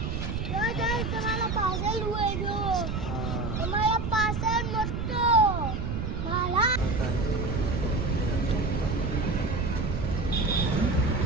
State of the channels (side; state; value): right; noise; rumble, 2 dB below the sound